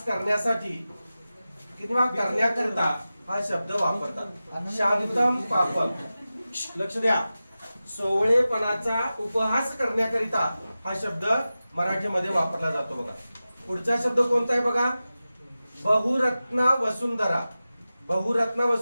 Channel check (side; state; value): both; inverted; correlation -0.95